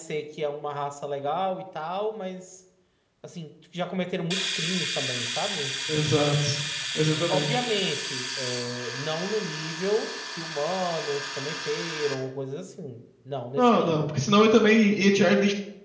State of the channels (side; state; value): both; identical; correlation 1.00